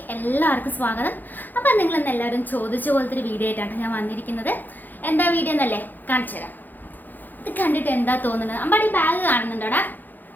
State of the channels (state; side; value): late; right; 0.086 ms